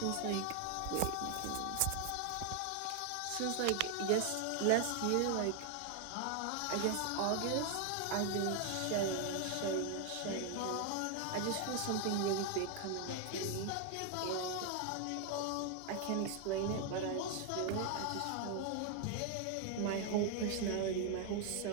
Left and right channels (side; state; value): both; different; correlation 0.00